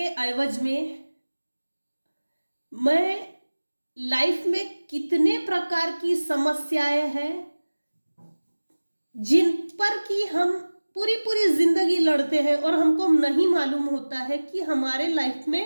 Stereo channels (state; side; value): inverted; both; correlation -1.00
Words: एवज में मैं लाइफ में कितने प्रकार की समस्याएं हैं जिन पर कि हम पूरी पूरी जिंदगी लड़ते हैं और हमको नहीं मालूम होता है कि हमारे लाइफ